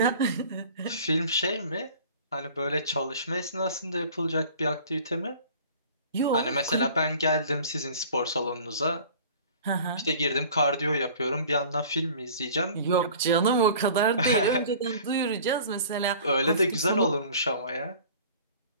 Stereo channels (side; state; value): both; inverted; correlation -0.46